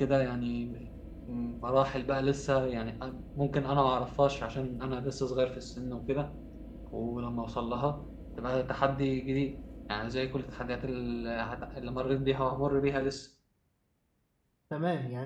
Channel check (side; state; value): both; identical; correlation 1.00